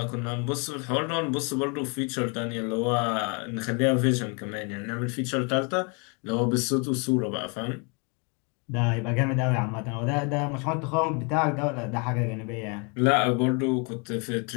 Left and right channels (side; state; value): right; quieter; 34.0 dB